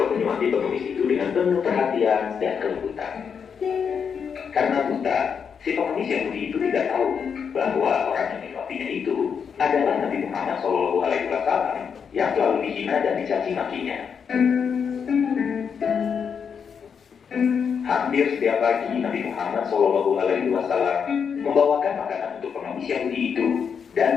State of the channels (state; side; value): quieter; right; 6.8 dB